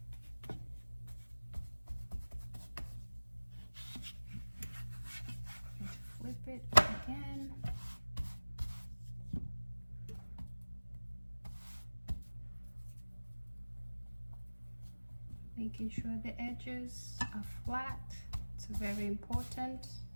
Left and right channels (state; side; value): inverted; both; correlation -1.00